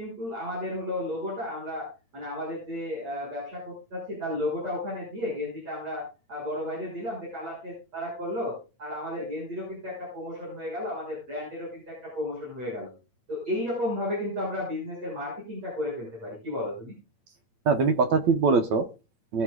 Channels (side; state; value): left; late; 8.8 ms